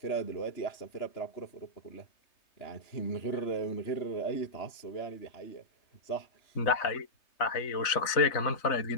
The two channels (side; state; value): right; late; 3.3 ms